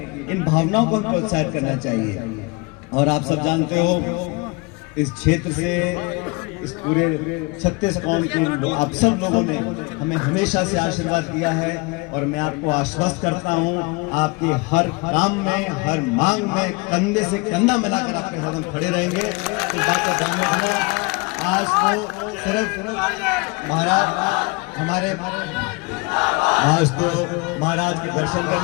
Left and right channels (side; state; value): right; quieter; 27.6 dB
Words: इन भावनाओं को प्रोत्साहित करना चाहिए। और आप सब जानते हो इस क्षेत्र से, इस पूरे 36 कौम के आप सब लोगों ने हमें हमेशा से आशीर्वाद दिया है और मैं आपको आश्वस्त करता हूं, आपके हर काम में, हर मांग में कंधे से कंधा मिलाकर आपके साथ हम खड़े रहेंगे। इस बात का ध्यान रखना। आज तो सिर्फ महाराज के दर्शन